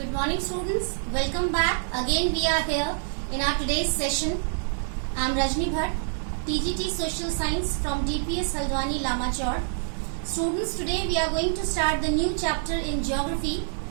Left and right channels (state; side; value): silent; left; digital silence